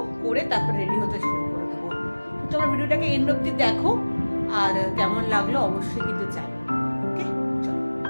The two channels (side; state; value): both; inverted; correlation -1.00